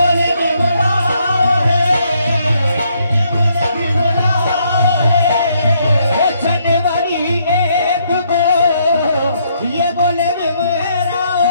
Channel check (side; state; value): both; inverted; correlation -0.72